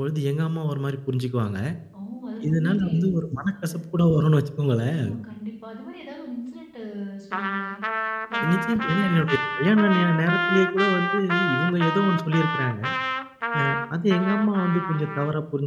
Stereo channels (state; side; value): identical; both; correlation 1.00